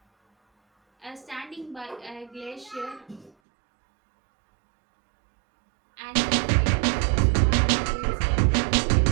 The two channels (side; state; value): left; drops out; at 3.3 s